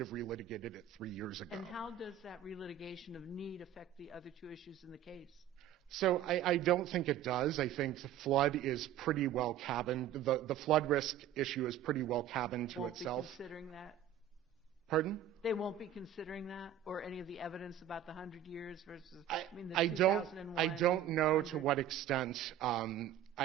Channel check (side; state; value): left; quieter; 10.3 dB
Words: relitigated it 3 years ago. And how does that relitigation of need affect the other two issues in the case? So I don't think it does. I think the flood is pretty well cabined. The flood risk issue is pretty well cabined to itself. Won't be considering that? Pardon? They won't be considering that, or any of the evidence about the 100 years versus the 2001? I don't know to what extent.